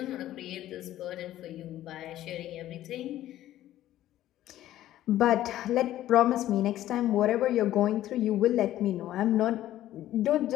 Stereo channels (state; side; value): quieter; right; 13.5 dB